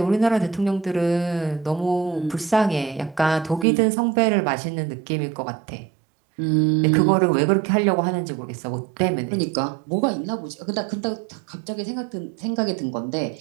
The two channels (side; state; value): left; drops out; at 3.7 s